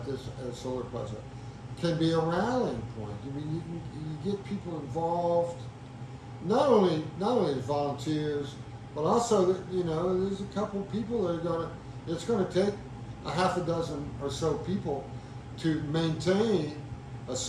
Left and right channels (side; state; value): both; identical; correlation 1.00